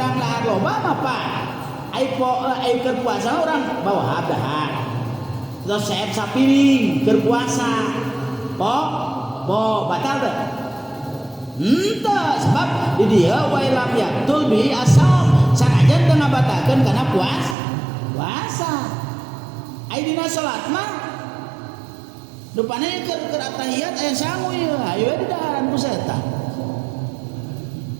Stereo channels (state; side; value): drops out; left; at 17.6 s